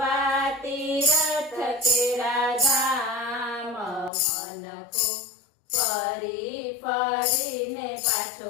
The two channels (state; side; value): drops out; right; at 4.1 s